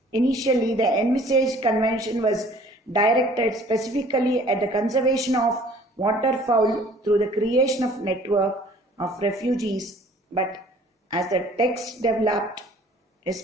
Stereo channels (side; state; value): both; normal; correlation 0.54